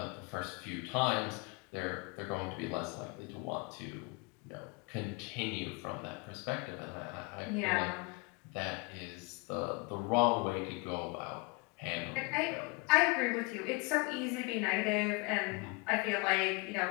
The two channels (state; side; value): quieter; right; 28.5 dB